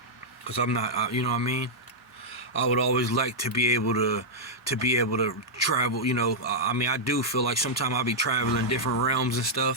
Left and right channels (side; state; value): both; normal; correlation -0.06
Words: Because I'm not, you know what I mean? I would always like to be able to travel, you know. I mean, I do feel like sometimes I'll be traveling different realms and